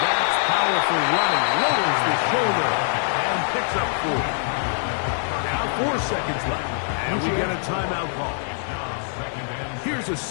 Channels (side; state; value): right; silent; 63 dB below the other